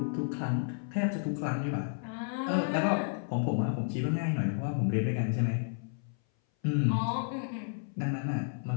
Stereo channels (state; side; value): silent; right; 57 dB below the other